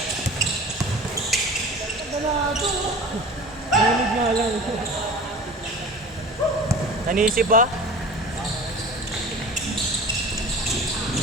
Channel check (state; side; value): normal; both; correlation 0.39